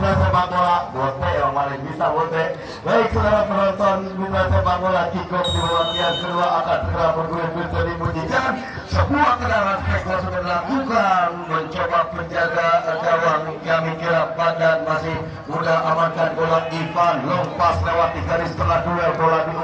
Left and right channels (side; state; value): both; identical; correlation 1.00